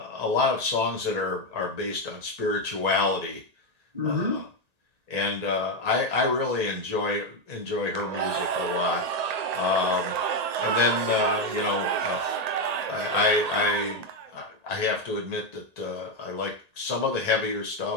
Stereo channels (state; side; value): late; left; 1.8 ms